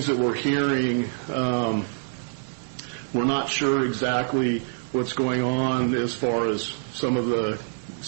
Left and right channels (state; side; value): silent; left; 60 dB below the other